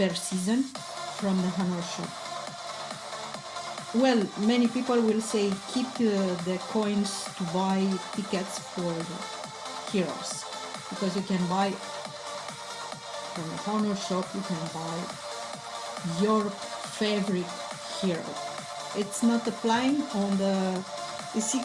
season from the Honor shop. Well, many people will say keep the coins to buy tickets for the heroes, because you can buy from the Honor shop, you can buy your favorite hero. It's not applying on the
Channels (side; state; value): both; identical; correlation 1.00